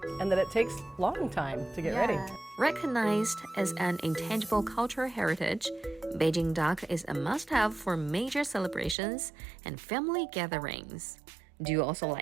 and that it takes long time to get ready. Recognized as an intangible cultural heritage, Beijing Duck is a must-have for major celebrations and family gatherings. Do you also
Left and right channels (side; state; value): left; drops out; at 9.0 s